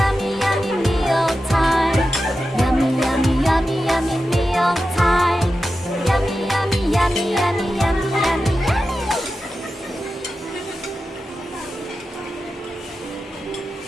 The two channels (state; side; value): normal; both; correlation 0.92